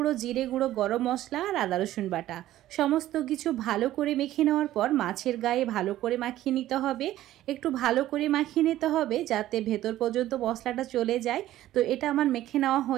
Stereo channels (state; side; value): quieter; left; 14.1 dB